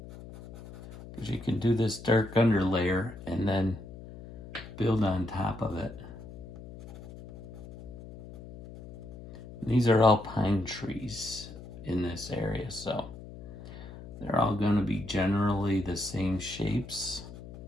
Because you can do this dark underlayer and then build on top of it. And these are all pine trees in this area, so they're all going to be generally the same shapes.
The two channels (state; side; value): noise; left; hum, 15 dB below the sound